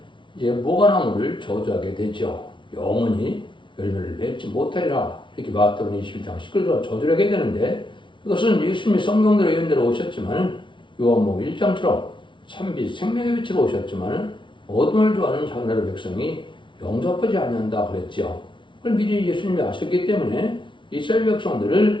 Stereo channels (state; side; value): late; right; 0.24 ms